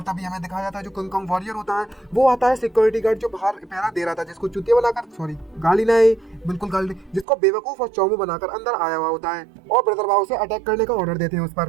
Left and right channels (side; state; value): left; drops out; at 7.2 s